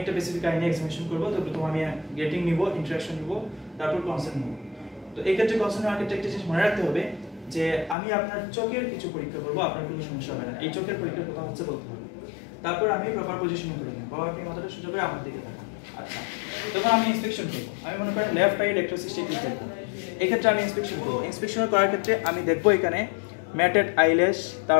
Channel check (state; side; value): drops out; right; at 8.0 s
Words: বেসিক আইনে এক্সামিনেশন করব। তো প্রথমে আমি গেটিং নিব, ইন্টারাকশন নিব, তারপর কনসেন্ট নিব। তো এই ক্ষেত্রে কনসেন্ট নেওয়ার ক্ষেত্রে একটা জিনিস মনে রাখতে হবে যে আমি আপনার চোখের কিছু পরীক্ষা করব, আপনার কোনো সমস্যা হবে না। এই চোখের পরীক্ষার কথা হচ্ছে বলতে হবে। তারপর আমি প্রপার পজিশনিং করে নেব। বাবা আপনি মাথাটা সোজা করে আমার দিকে তাকান। আচ্ছা, তখন আমি ইন্সপেকশন করব। আমি মনে করেন লেফট আই ডেক্রোসিস্টেটিস দেখব। এই ক্ষেত্রে আমি ইন্সপেকশন করব। ইন্সপেকশন করার ক্ষেত্রে আমি দেখব এখানে ম্যাটেড আইল্যাশ,